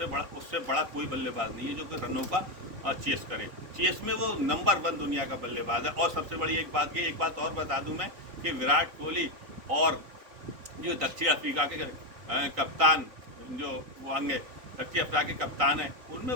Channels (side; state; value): left; late; 3.8 ms